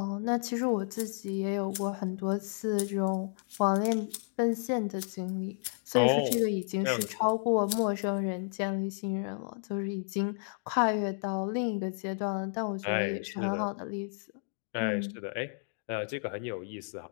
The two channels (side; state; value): right; silent; digital silence